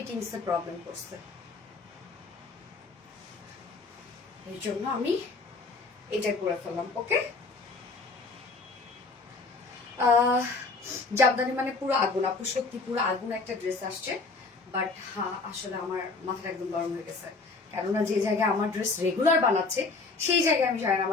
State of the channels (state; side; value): quieter; right; 3.9 dB